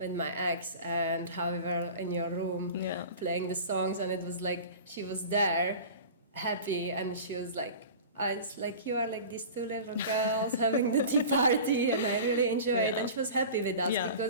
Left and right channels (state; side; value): inverted; both; correlation -0.37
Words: my ex, and how we were in your room playing the songs, and it was like she was there happy, and she was like, it's like, you are like these two little girls having the tea party, and I really enjoyed it. And she was happy with us